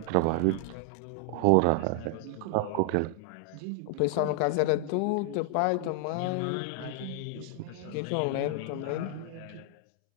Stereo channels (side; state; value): both; different; correlation 0.00